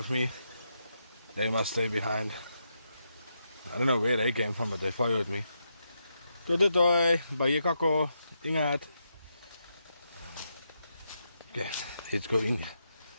me. They must stay behind. I don't know where they came from, but they followed me. Toi, toi, toi. Baie kako. Ingat. Okay, let's go in.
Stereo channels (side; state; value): both; inverted; correlation -0.83